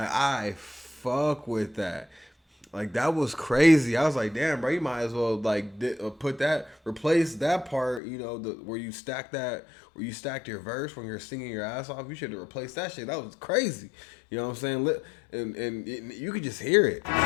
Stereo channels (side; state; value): right; drops out; at 8.0 s